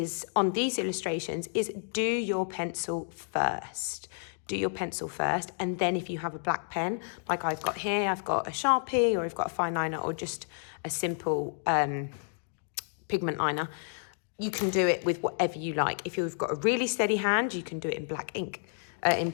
on these illustrations is do your pencil first. Do your pencil first, and then if you have a black pen, like I've got here, I've got a Sharpie, or I've got a fine liner, or just a simple pigment liner, you can do it with whatever you like. If you've got a really steady hand, you can do it in black ink, in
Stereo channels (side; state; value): right; silent; digital silence